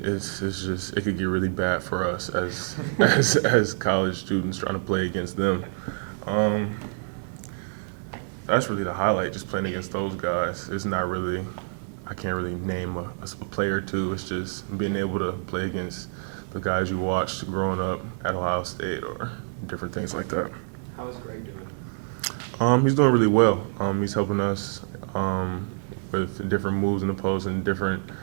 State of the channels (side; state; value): left; silent; digital silence